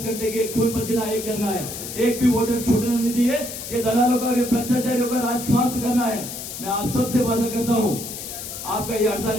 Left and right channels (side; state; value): left; noise; hiss, 9 dB below the sound